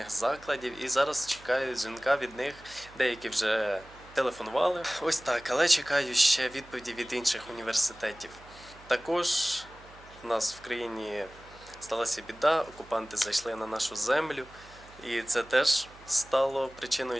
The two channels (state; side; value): noise; right; hum, 22 dB below the sound